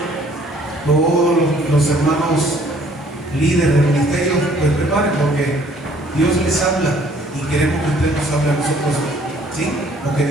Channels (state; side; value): normal; both; correlation 0.59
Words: todos los hermanos líderes del ministerio, pues preparen, porque Dios les habla y queremos que usted nos hable a nosotros, ¿sí? Porque